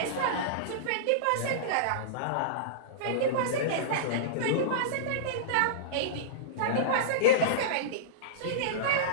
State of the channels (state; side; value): different; both; correlation -0.03